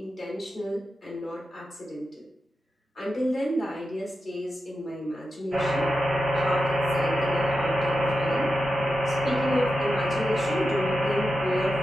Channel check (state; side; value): normal; both; correlation 0.89